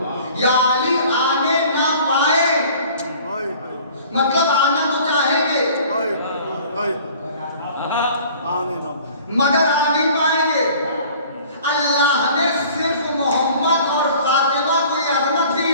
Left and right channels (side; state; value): both; inverted; correlation -0.48